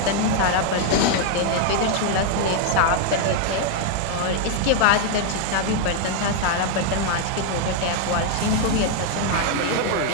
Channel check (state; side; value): different; both; correlation 0.00